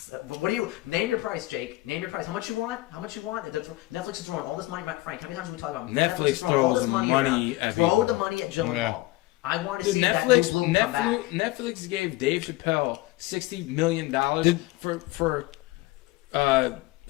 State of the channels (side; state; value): right; quieter; 19.4 dB